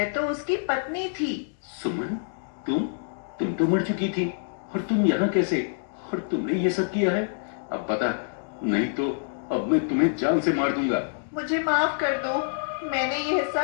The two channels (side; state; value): right; silent; digital silence